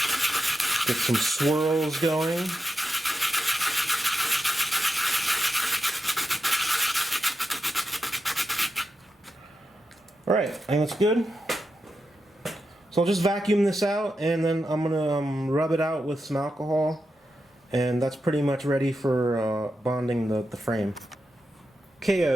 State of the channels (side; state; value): both; normal; correlation 0.88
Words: get some swirls going. Alright, I think that's good. So I'll just vacuum this out, and then I'm going to rub it out with some alcohol, and that's pretty much ready for bonding the frame. Okay,